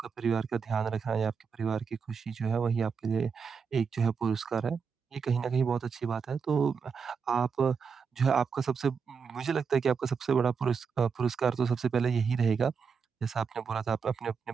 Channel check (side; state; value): left; quieter; 6.0 dB